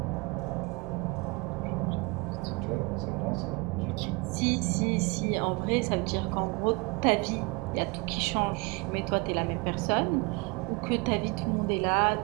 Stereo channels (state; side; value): quieter; left; 27.7 dB